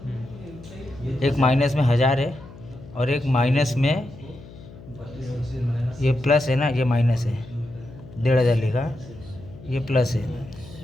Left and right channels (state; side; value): noise; left; hum, 18 dB below the sound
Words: एक माइनस में 1000 है, और एक माइनस में ये प्लस है ना, ये माइनस है, 1500 लिखा, ये प्लस है,